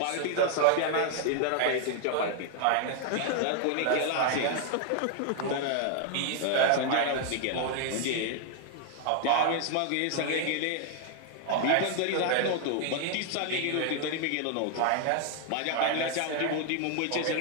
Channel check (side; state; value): both; different; correlation 0.00